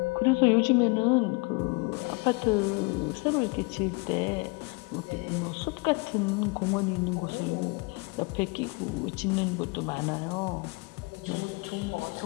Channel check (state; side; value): quieter; right; 29.1 dB